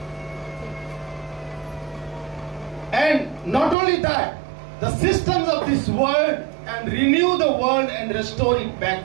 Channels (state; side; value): drops out; left; at 3.8 s